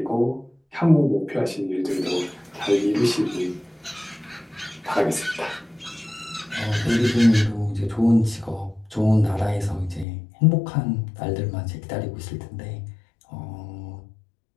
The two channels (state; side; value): drops out; right; at 10.1 s